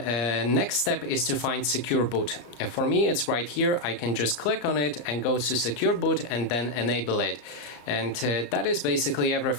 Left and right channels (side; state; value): right; late; 34 ms